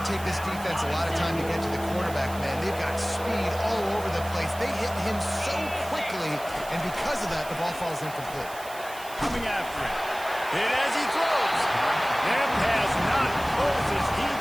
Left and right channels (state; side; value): noise; right; hiss, 16 dB below the sound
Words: take this defense a lot of time to get to the quarterback, man. They've got speed all over the place. They hit him so quickly, and because of that, the ball falls incomplete. Coming after him. Hit as he throws. That pass not close as he